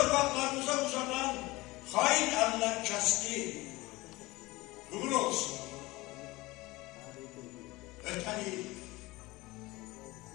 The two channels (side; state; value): right; quieter; 20.7 dB